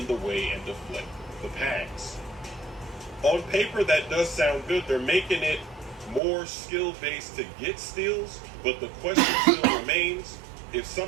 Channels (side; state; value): left; drops out; at 6.2 s